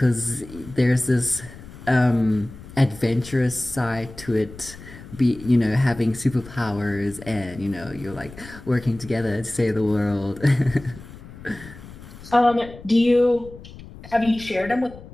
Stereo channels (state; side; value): noise; left; rumble, 17 dB below the sound